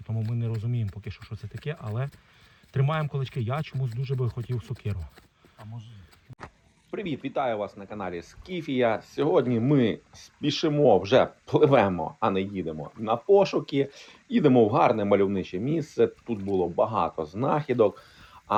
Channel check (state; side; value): identical; both; correlation 1.00